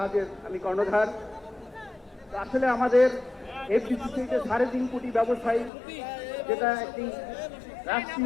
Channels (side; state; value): right; drops out; at 5.7 s